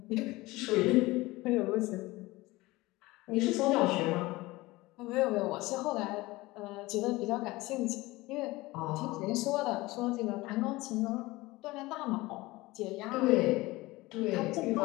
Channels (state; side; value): quieter; right; 20.4 dB